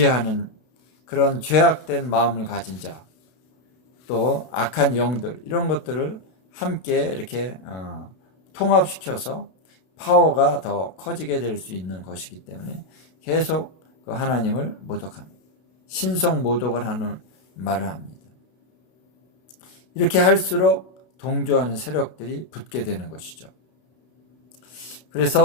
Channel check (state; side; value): late; right; 32 ms